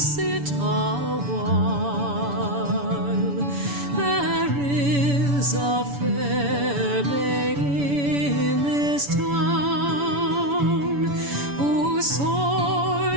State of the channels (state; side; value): late; left; 7.0 ms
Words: a while. There is a fair lady in this town who